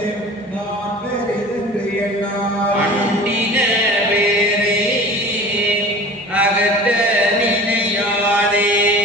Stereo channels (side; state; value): both; normal; correlation 0.40